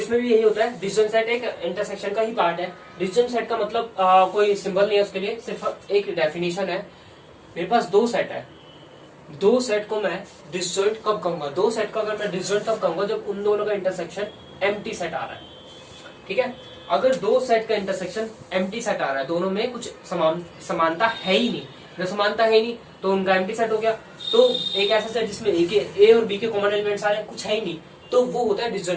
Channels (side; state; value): both; identical; correlation 1.00